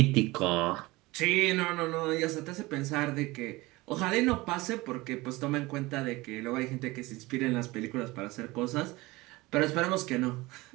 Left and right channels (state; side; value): quieter; left; 21.1 dB